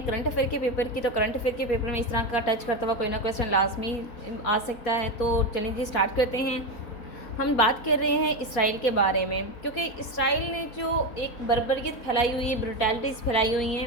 करंट अफेयर के पेपर की, तो करंट अफेयर के पेपर में इस तरह का टच करता हुआ कोई ना क्वेश्चन लाजमी आ सकता है। तो चलिए जी, स्टार्ट करते हैं। हम बात कर रहे हैं इसराइल के बारे में, क्योंकि इसराइल ने जो एक बर्बरियत फैलाई हुई है, ब्रुटैलिटीज़ फैलाई हुई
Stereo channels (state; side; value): late; right; 4.2 ms